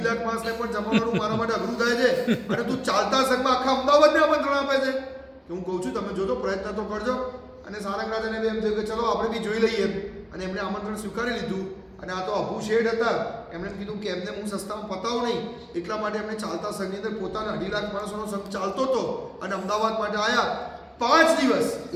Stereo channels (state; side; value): identical; both; correlation 1.00